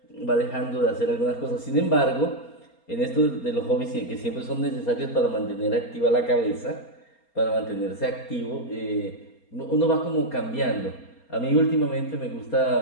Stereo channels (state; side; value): late; right; 4.3 ms